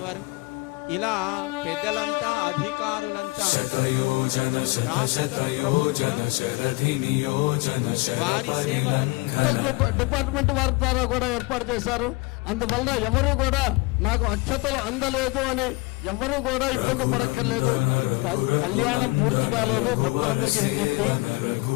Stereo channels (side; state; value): right; quieter; 24.9 dB